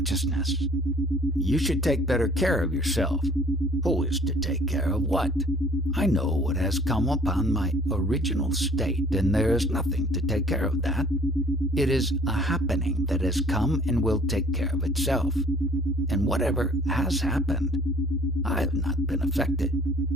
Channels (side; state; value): both; normal; correlation 0.53